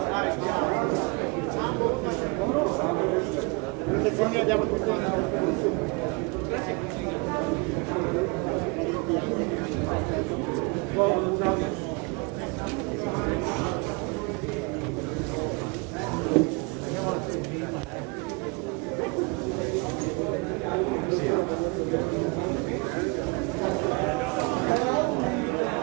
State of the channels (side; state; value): left; quieter; 29.7 dB